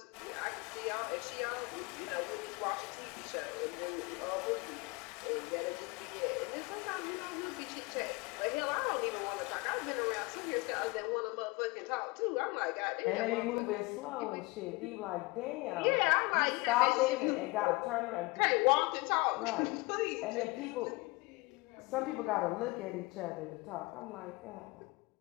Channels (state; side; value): quieter; right; 24.6 dB